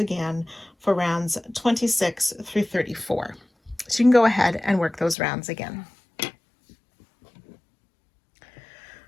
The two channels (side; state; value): right; drops out; at 5.2 s